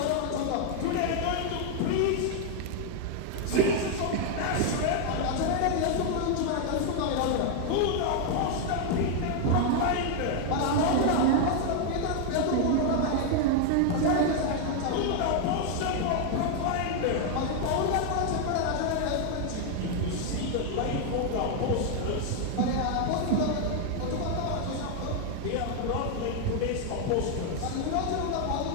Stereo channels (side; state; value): both; different; correlation 0.00